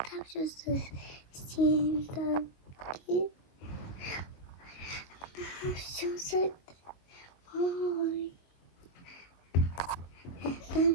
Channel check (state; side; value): late; right; 22 ms